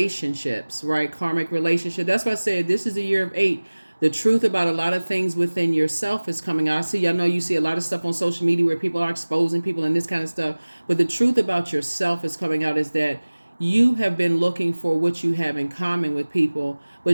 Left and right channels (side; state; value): both; inverted; correlation -1.00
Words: right? Karmic relationship. That's why I said this is a year of 8. The truth about a lot of things within yourself is coming out. I know you see a lot of stuff on social media where people are exposing people and this kind of stuff, but the truth about yourself is coming out is that you have been looking for what you have in common with people,